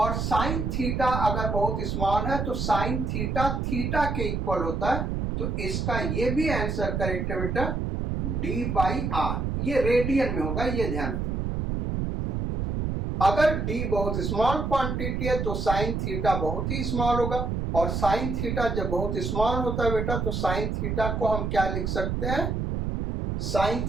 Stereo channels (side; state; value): right; noise; rumble, 1 dB below the sound